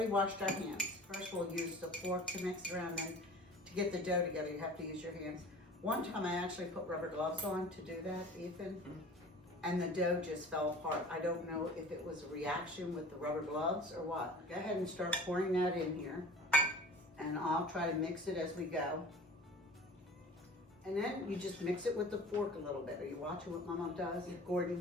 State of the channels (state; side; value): normal; both; correlation 0.42